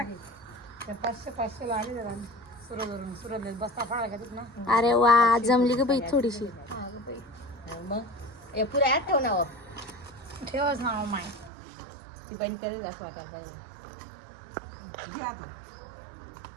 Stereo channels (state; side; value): drops out; left; at 11.5 s